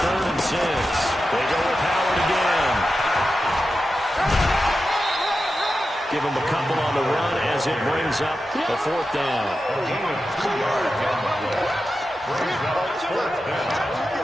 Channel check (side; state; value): both; normal; correlation 0.91